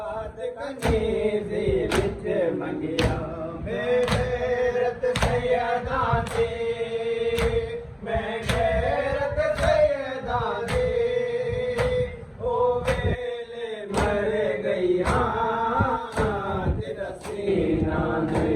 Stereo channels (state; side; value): identical; both; correlation 1.00